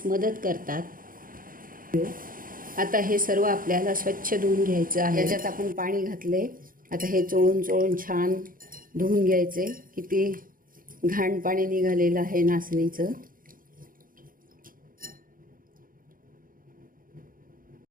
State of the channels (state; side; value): late; left; 0.40 ms